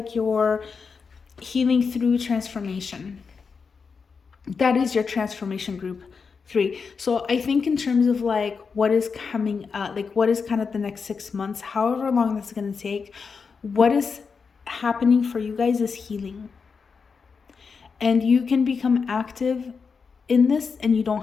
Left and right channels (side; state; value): right; quieter; 5.4 dB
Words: you're healing through transformation. That is your transformation group 3. So I think in terms of like what is coming up, like what is kind of the next 6 months, however long that's going to take, what is happening for you guys is healing. And you can become active in this and you